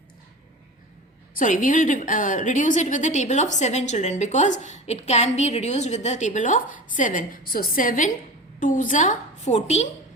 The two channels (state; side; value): normal; both; correlation 0.32